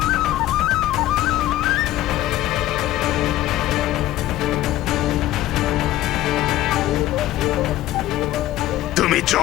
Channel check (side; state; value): right; quieter; 14.8 dB